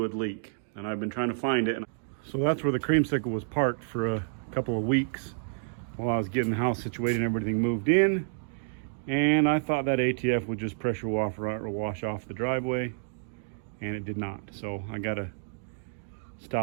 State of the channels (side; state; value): left; silent; digital silence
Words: leak, and I've been trying to find it. So that's where the Creamsicle was parked for a couple of weeks while I was getting the house situated and everything moved in. And I thought that ATF would just pressure wash off the driveway, and it did not. So I gotta